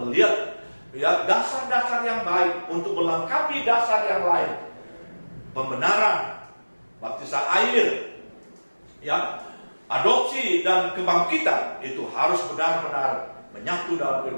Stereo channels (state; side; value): inverted; both; correlation -1.00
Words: ya, dasar-dasar yang baik untuk melengkapi dasar yang lain. Pembenaran, baptisan air, ya, adopsi dan kebangkitan itu harus benar-benar menyatu dalam